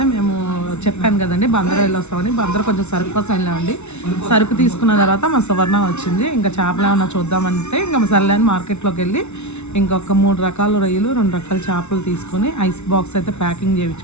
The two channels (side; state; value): right; late; 0.82 ms